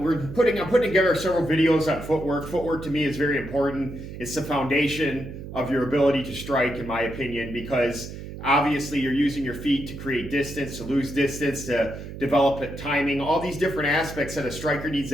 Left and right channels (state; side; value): noise; right; hum, 11 dB below the sound